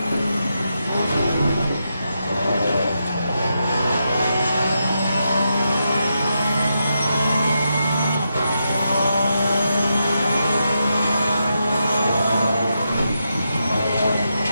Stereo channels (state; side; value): inverted; both; correlation -0.85